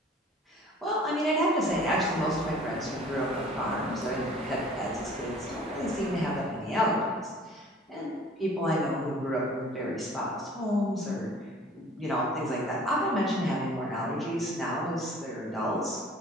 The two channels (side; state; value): both; normal; correlation 0.49